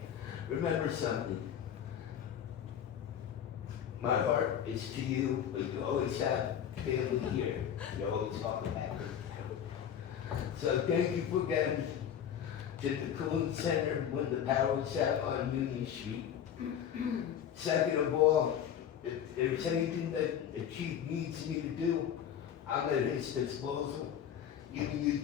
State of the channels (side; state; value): right; quieter; 9.1 dB